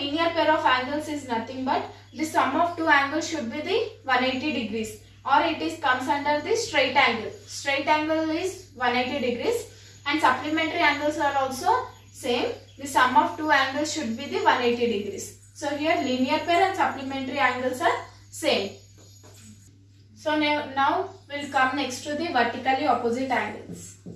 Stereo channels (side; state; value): both; identical; correlation 1.00